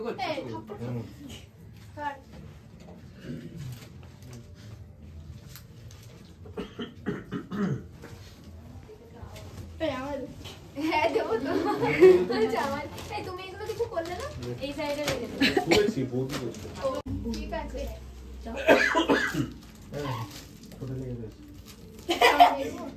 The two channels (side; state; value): both; identical; correlation 1.00